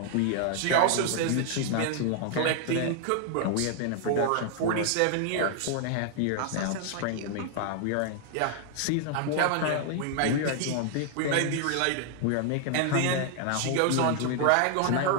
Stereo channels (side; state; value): both; different; correlation 0.00